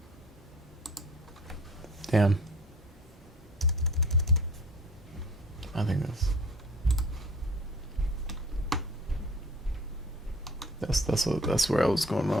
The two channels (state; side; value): normal; both; correlation 0.48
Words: Damn. I think that's where I was going